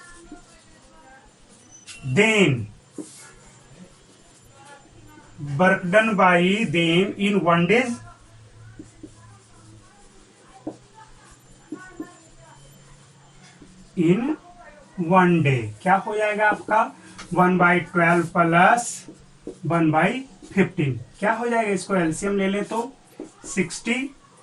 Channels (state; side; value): identical; both; correlation 1.00